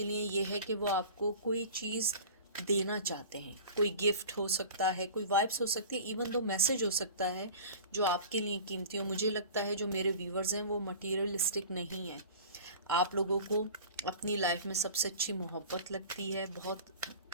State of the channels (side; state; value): both; inverted; correlation -0.40